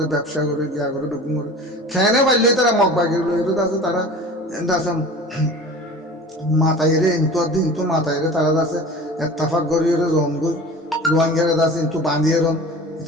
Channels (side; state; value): both; normal; correlation 0.39